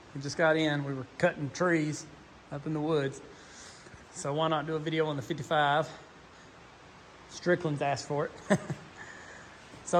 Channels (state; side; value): identical; both; correlation 1.00